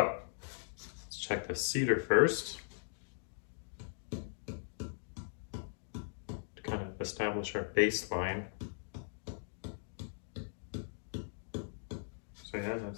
let's check the cedar first to kind of establish our baseline. So yeah,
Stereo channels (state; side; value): silent; right; digital silence